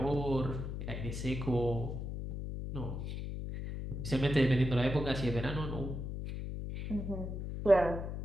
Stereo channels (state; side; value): noise; left; hum, 5 dB below the sound